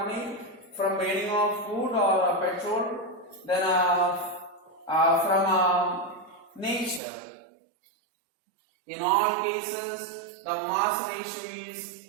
from burning of food or petrol, then from nature. In all cases, the mass ratio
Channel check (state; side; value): drops out; left; at 7.0 s